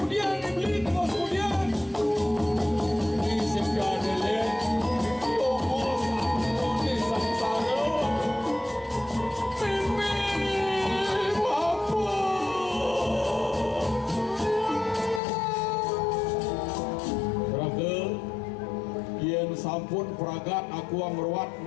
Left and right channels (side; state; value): right; drops out; at 15.2 s